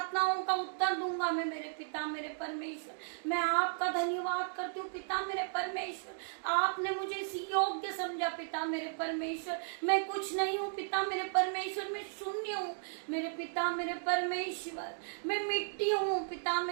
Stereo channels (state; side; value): silent; left; digital silence